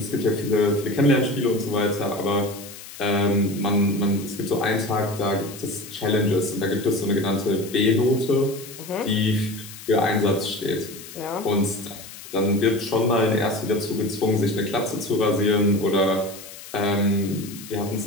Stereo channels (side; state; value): left; noise; hiss, 15 dB below the sound